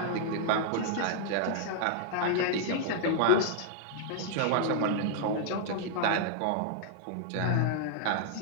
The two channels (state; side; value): different; both; correlation -0.01